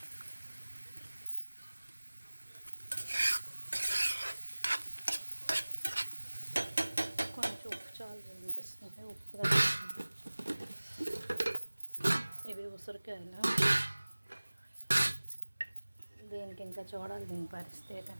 కొంచెం ఉప్పు చాలు అనిపిస్తుంది, ఉప్పు. ఇవి ఉసిరికాయలు. దీనికి ఇంకా చూడాలి దీని పరిస్థితి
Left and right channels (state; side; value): inverted; both; correlation -1.00